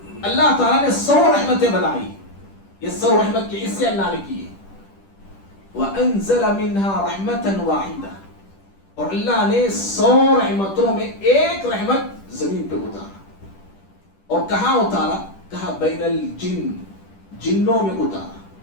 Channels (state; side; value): late; right; 10 ms